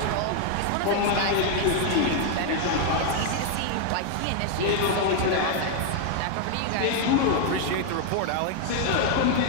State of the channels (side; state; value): both; different; correlation 0.00